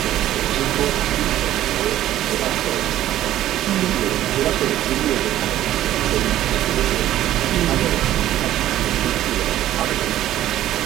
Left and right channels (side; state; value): left; quieter; 13.1 dB